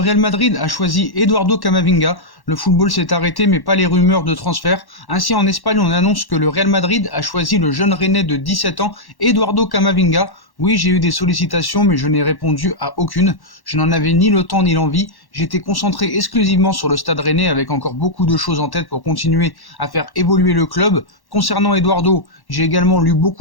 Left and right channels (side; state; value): right; late; 1.1 ms